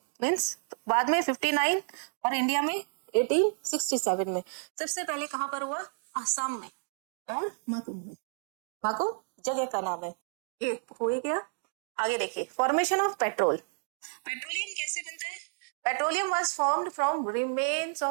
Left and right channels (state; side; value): silent; left; digital silence